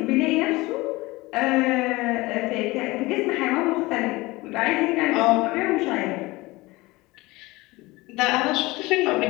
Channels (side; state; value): right; quieter; 21.3 dB